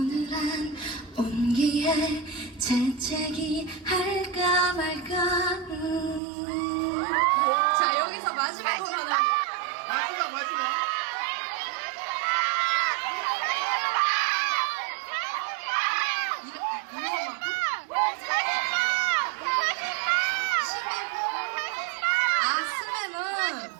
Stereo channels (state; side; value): drops out; left; at 6.2 s